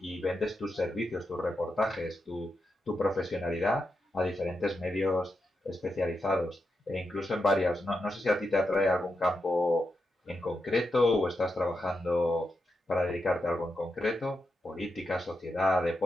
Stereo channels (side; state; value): both; normal; correlation 0.86